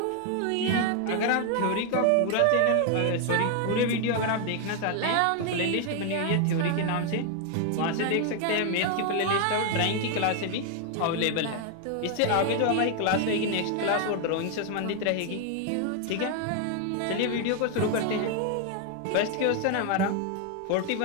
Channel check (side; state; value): both; different; correlation 0.00